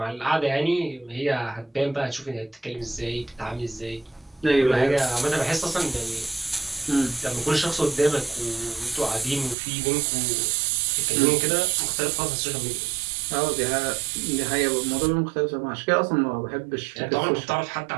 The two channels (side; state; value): left; drops out; at 9.6 s